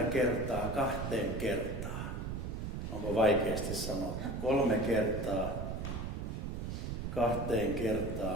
kertaa 2 kertaa. Onko vaikeasti sanottu? 3 kertaa 2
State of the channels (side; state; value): right; noise; rumble, 4 dB below the sound